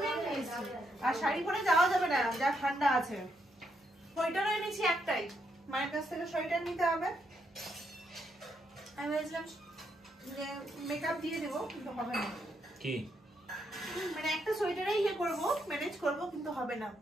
নিয়ে এসেছি। আর শাড়ি পরে যাওয়া যাবে না, যা ঠান্ডা আছে। সোয়েটারও এনেছি একটাই, মায়ের কাছ থেকে সোয়েটার নিতে হবে। আমি ভেবেছিলাম যে মেকআপ দিয়ে দেবো, কিন্তু হবে না। কি মানে একটা সোয়েটারেই ইয়ে করবো, ম্যানেজ করবো, কিন্তু হবে না।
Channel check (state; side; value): normal; both; correlation 0.78